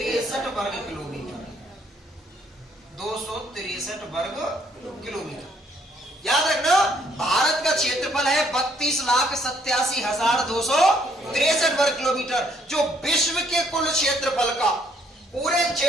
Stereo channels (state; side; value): normal; both; correlation 0.67